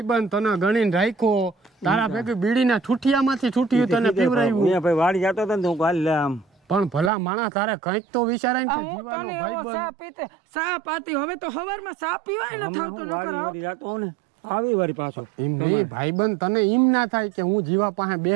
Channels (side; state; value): left; drops out; at 7.1 s